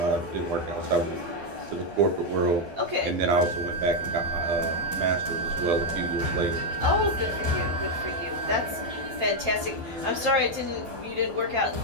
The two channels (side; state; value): left; late; 12 ms